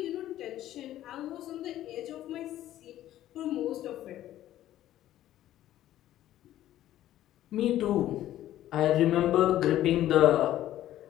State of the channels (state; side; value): quieter; right; 13.2 dB